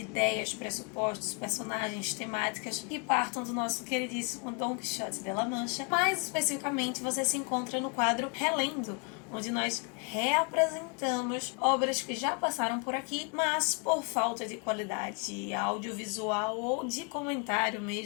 ideias, pressupostos, personagens, temáticas que partam do nosso queridíssimo Dom Quixote de La Mancha. Mais especificamente, você se encontra no quadro Relendo, onde nós reapresentamos obras que já passaram por aqui, mas por falta de qualidade audiovisual ou de comentário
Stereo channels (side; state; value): right; quieter; 33.7 dB